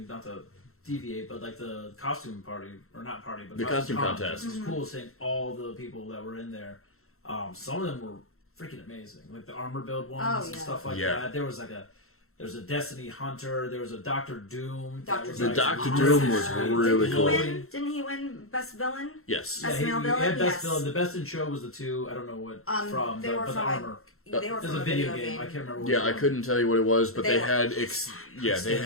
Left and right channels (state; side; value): late; right; 0.63 ms